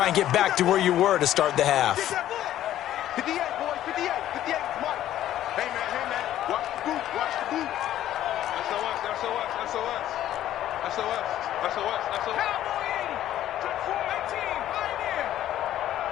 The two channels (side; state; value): right; quieter; 12.5 dB